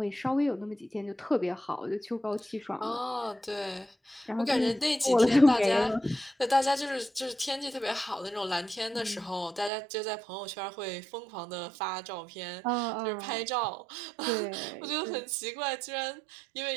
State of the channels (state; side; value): drops out; left; at 9.7 s